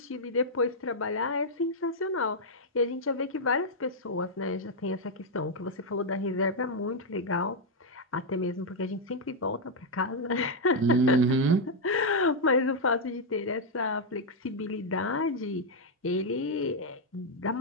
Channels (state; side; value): normal; both; correlation -0.02